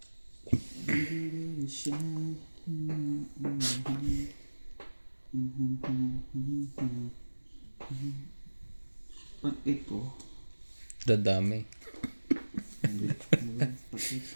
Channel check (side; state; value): both; inverted; correlation -1.00